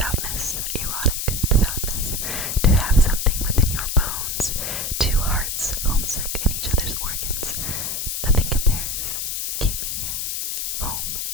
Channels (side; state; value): left; noise; hiss, 2 dB below the sound